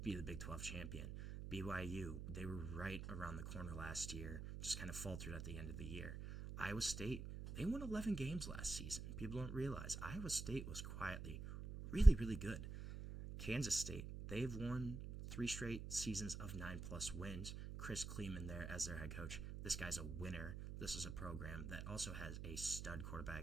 be the Big 12 champion. BYU, they were right around the corner last year, just kind of faltered at the end of the year. Iowa State, they won 11 games last season. People don't realize Iowa State was quietly really, really good. Kansas State, they've won 3 straight seasons of 9+ wins. Chris Kleeman there as their head coach. This guy's a winner. This is a program that also has a stud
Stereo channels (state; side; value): noise; right; hum, 7 dB below the sound